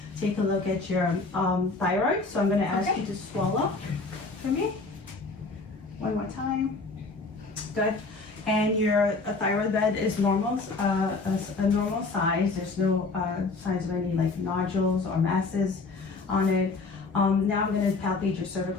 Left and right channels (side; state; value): right; quieter; 3.8 dB